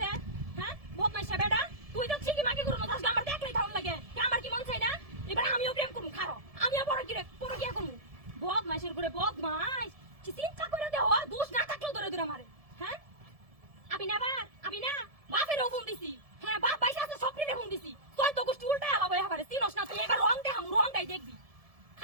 হ্যাঁ বদমাইশা বেডা তুই তো ঠিকই মাকে করো না আজকে আমার দেখলেই থাউন লাগে কি আমার কি মন চাই না এবার আমিও প্রেম করব খারো আমিও বড় কি করব বদমাইশের করে বদমাইশ কি চিন্তা করে দেও দোষ না থাকলেও ধরে ধরে মারে হ্যাঁ আমি না বাপেরও ফোন দিছি হ্যাঁ বাপ পয়সা আছে সবরিরে ফোন দিছি তুই তো গোষ্ঠী উল্টা আলাবো এবারে চিনস না তুই এবার রং দেখাম রংটাই দেখবি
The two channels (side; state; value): left; late; 1.7 ms